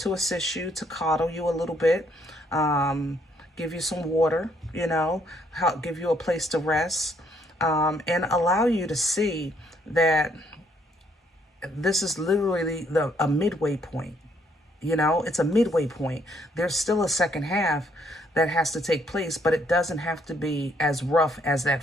assist you, to coddle you a little bit, give you some water, you know, give you a place to rest, and allow you to see that this is literally a midway point. You know, it's a midway point. There's still a second half that has to take place, but it doesn't have to be as rough as that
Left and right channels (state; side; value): normal; both; correlation 0.69